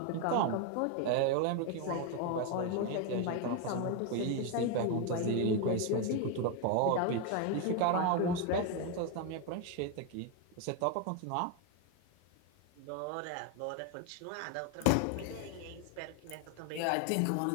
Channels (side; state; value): both; different; correlation 0.01